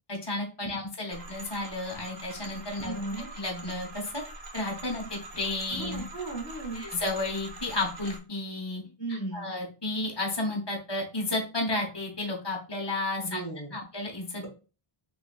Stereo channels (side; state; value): right; late; 1.2 ms